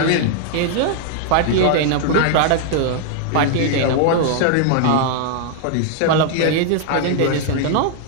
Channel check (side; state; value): both; different; correlation -0.01